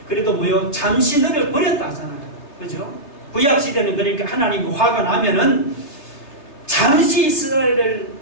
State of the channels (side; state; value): right; late; 3.3 ms